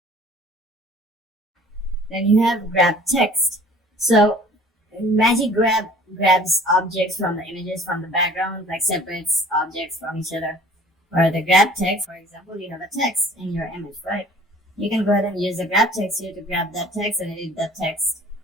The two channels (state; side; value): normal; both; correlation 0.50